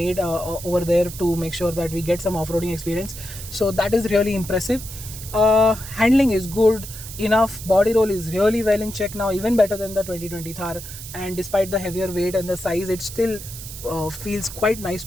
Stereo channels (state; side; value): noise; right; hiss, 12 dB below the sound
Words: over there to make sure that we get some off-roading experience. So that is really impressive. Handling is good enough, body roll is really well in check now, even better than the 2020 Thar, and despite the heavier weight and the size, it still feels quite nice